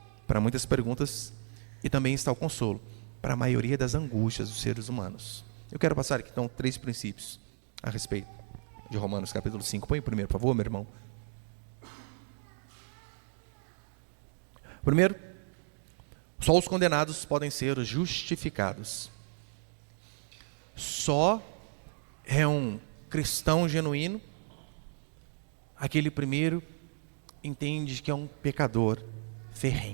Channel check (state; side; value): silent; left; digital silence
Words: para muitas perguntas e também está o consolo para a maioria das angústias dos seres humanos. Eu quero passar aqui então 3 princípios a respeito de Romanos capítulo 5. Põe o primeiro, por favor, meu irmão. Primeiro, só os condenados podem ser justificados. Só é um cristão genuíno aquele primeiro entende que é um pecador